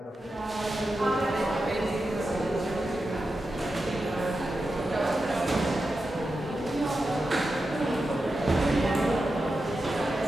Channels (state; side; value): normal; both; correlation 0.90